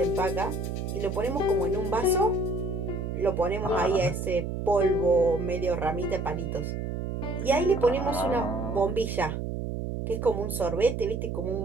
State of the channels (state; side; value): noise; right; hum, 3 dB below the sound